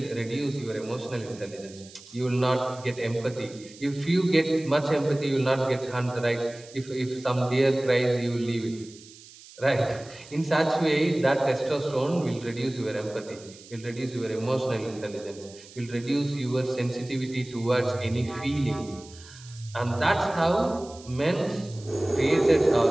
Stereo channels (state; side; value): noise; right; hiss, 20 dB below the sound